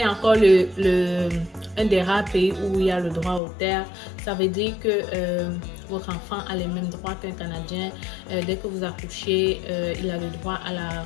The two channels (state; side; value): drops out; right; at 3.4 s